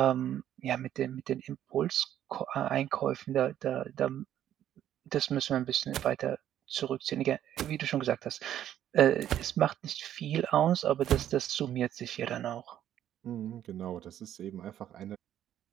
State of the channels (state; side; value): quieter; left; 11.2 dB